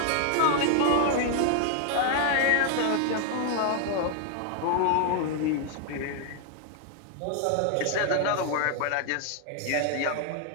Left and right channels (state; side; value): different; both; correlation 0.00